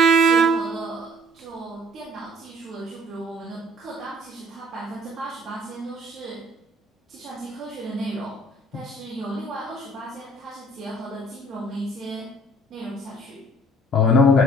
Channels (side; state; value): both; normal; correlation 0.56